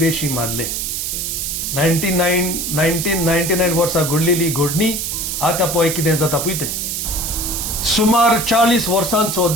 मारले. 1999 वर्सा घडलेली घडणी आतां पळय कितें जाता पळय तें. सुमार 40 वर्सांचो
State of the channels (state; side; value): noise; right; hiss, 3 dB below the sound